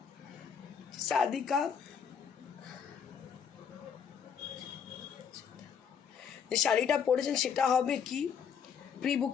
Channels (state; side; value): quieter; right; 7.3 dB